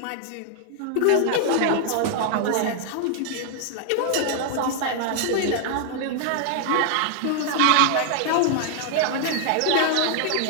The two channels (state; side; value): different; both; correlation 0.00